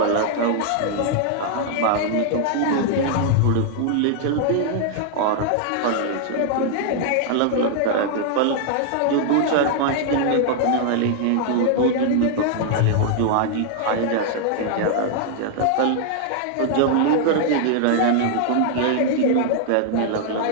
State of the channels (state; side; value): different; both; correlation 0.00